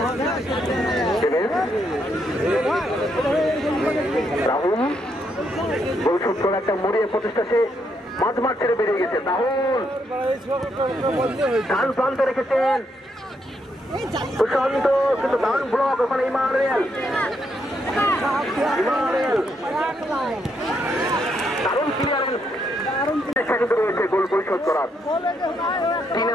রাহুল বৈশিষ্ট্য একটা মরিয়ে প্রচেষ্টা, সে মাঝ মাঠ ছেড়ে বেরিয়ে গেছে। রাহুল ডান প্রান্তে রেখেছেন সুশান্ত, কিন্তু ডান ব্লক ওখানে ইমানুয়েল দারুণ ক্লিয়ারেন্স কিন্তু রয়েছে গোল পরিশোধ করার।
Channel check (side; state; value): both; normal; correlation 0.77